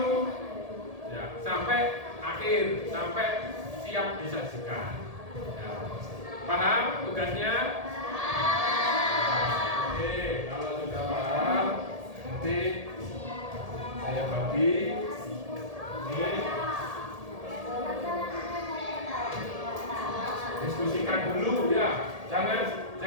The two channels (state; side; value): late; left; 1.8 ms